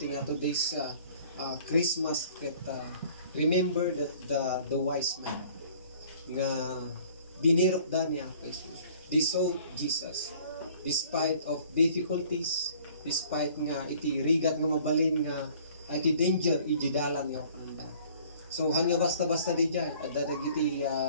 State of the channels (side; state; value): both; inverted; correlation -0.54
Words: today's Christmas ket remember that the wise man nga binirok da niya Jesus. They saw Jesus despite of difficulties, despite nga iti rigat nga mabalin nga iti danger iti dalan nga panda. So han nga basta-basta di dyan adda dagiti